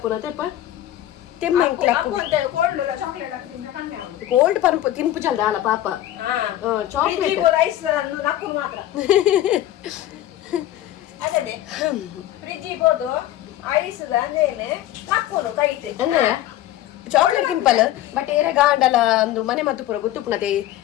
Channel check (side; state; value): right; quieter; 13.4 dB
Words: ತೆಪ್ಪ ತೆಮ್ಮ ಗೋಲ್ಡ್ ಪಂಪು ತಿನ್ಪು ಚಲ್ದ ಅಲ್ಲ ಪಾಪ ಚಾಕ್ಲೇಟ್ ಚಾಕ್ಲೇಟ್ ತಿಂಪಲ್ ಬಟ್ ಏರ ಗಾಂಡಲ ಒಂದು ಮನೆ ಮತ್ತು ಪುರ ಗೊತ್ತುಪುನತೆ